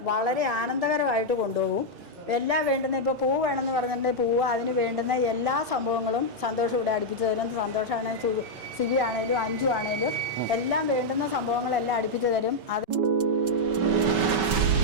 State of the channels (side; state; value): left; late; 5.2 ms